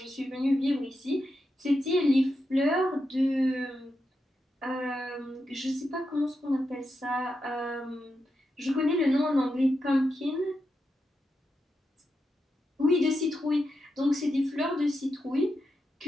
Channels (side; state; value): both; normal; correlation 0.87